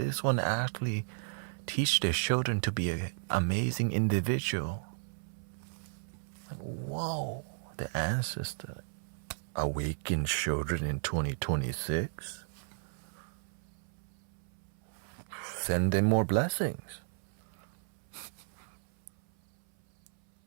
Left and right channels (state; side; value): silent; left; 55 dB below the other